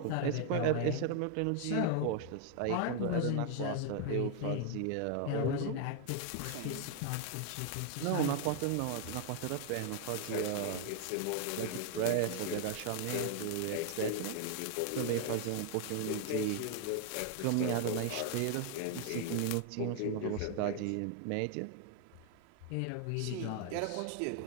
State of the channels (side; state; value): both; different; correlation 0.00